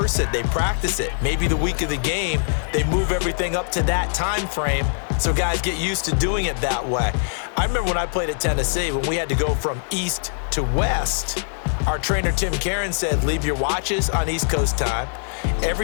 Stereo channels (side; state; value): right; silent; digital silence